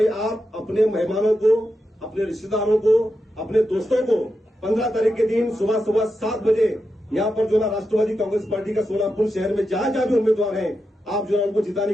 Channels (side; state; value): both; normal; correlation 0.87